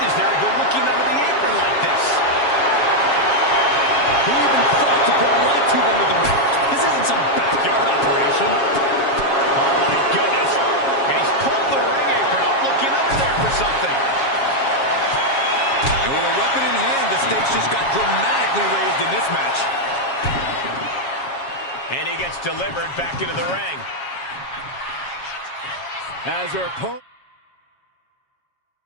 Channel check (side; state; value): right; late; 7.3 ms